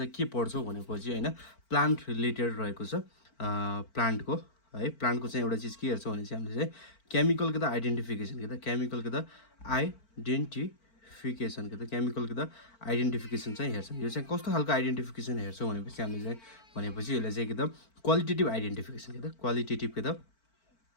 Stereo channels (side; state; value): right; late; 4.5 ms